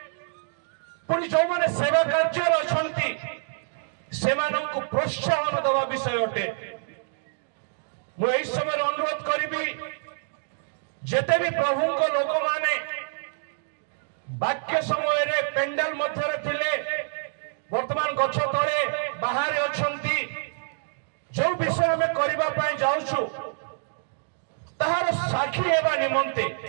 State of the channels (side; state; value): left; silent; digital silence